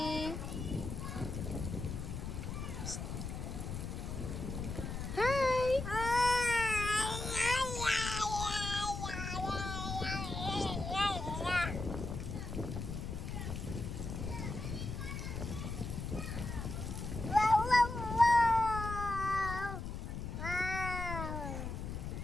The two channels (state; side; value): noise; left; rumble, 5 dB below the sound